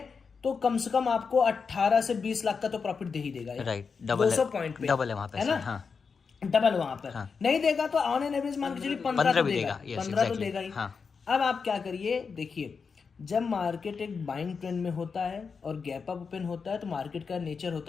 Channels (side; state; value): right; quieter; 5.4 dB